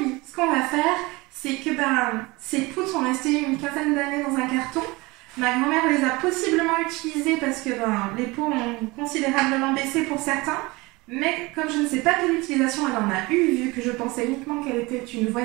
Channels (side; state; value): left; quieter; 23.3 dB